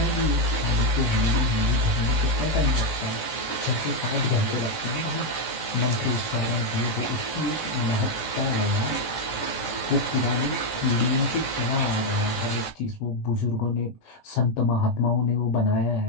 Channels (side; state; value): right; late; 17 ms